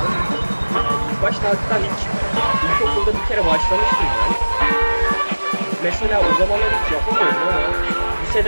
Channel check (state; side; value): inverted; both; correlation -1.00